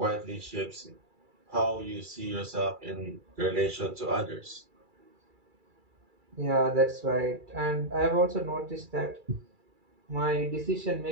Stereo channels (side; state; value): left; late; 2.3 ms